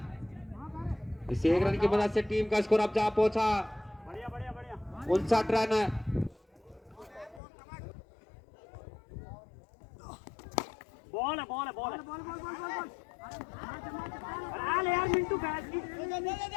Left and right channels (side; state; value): right; drops out; at 7.4 s